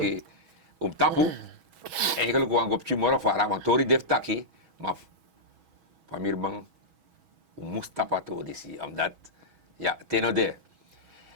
om tapu. Eigenlijk wang op morgen voor want tori def taki, maar van mir bang moest tapato disi, omdat ja, tenode.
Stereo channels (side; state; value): left; late; 6.2 ms